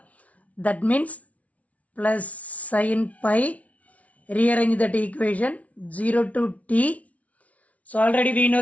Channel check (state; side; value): late; right; 0.067 ms